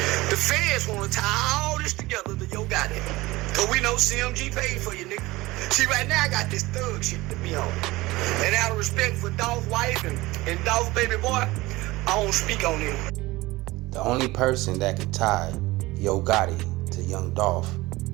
The feds want to tie all this together to your goddamn. Cause we know CMG paid for you, nigga. See, right now I got this thug shit to be on. And out of respect for Dolph's wife and Dolph's baby boy, I don't speak on him. The only person that can tie Yo Gotti to Young Dolph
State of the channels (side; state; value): left; quieter; 20.0 dB